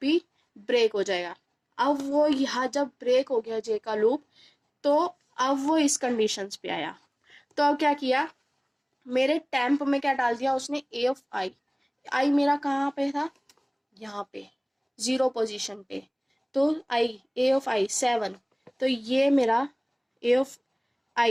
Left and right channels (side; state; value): both; identical; correlation 1.00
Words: ब्रेक हो जाएगा। अब वो यहाँ जब ब्रेक हो गया जे का लूप, तो अब वो इस कंडीशंस पे आया। तो अब क्या किया, मेरे टेम्प में क्या डाल दिया उसने, ए ऑफ आई। आई मेरा कहाँ पे था, यहाँ पे 0 पोजीशन पे। तो आई, ए ऑफ आई 7, तो ये मेरा ए ऑफ